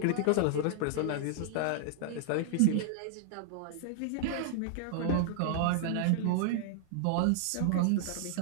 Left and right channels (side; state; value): both; different; correlation -0.01